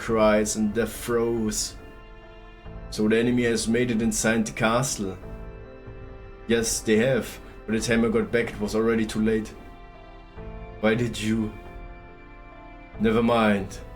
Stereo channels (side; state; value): both; identical; correlation 1.00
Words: and death throes. So the enemy has made it inside the castle. Yes, they have. By the time I got back, it was already too late. Why did you? Never mind.